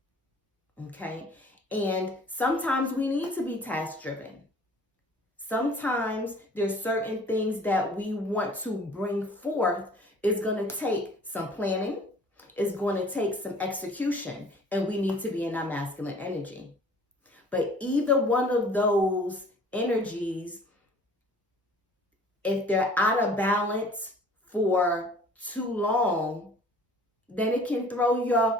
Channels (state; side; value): normal; both; correlation 0.50